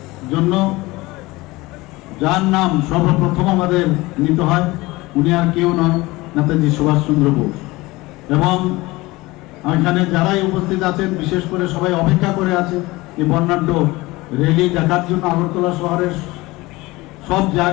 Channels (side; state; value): right; quieter; 21.0 dB